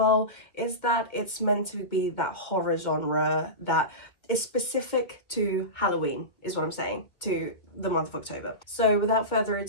is that it's meant to be that horror genre that is specific to Halloween, is what I'm saying, to the month of October. So without further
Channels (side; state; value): right; late; 2.2 ms